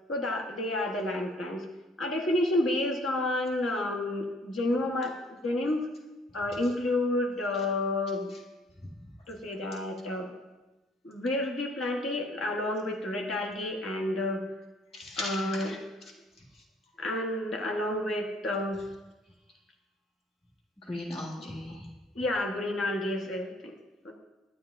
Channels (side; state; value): both; normal; correlation 0.58